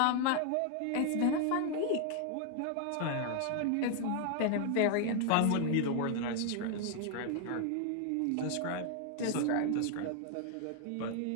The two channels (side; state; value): both; different; correlation 0.00